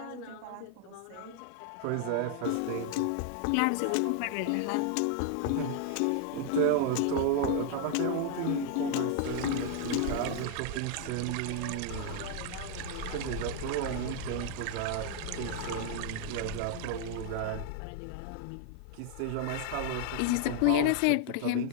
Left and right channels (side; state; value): both; different; correlation 0.00